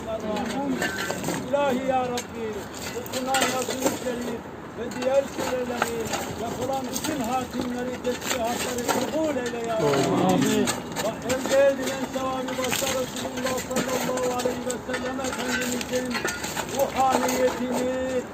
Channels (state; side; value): identical; both; correlation 1.00